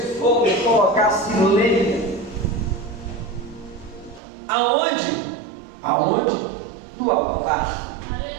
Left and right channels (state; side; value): drops out; left; at 4.2 s